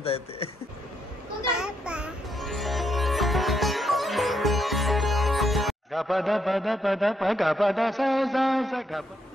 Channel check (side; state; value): both; normal; correlation 0.76